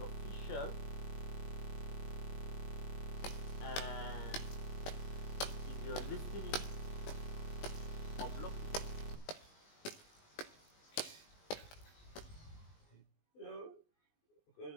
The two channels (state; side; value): late; right; 19 ms